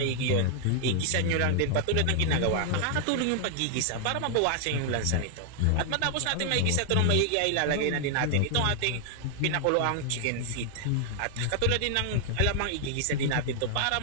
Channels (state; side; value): different; both; correlation -0.01